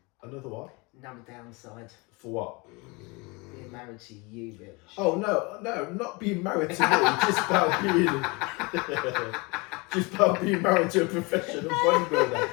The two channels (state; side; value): quieter; right; 27.2 dB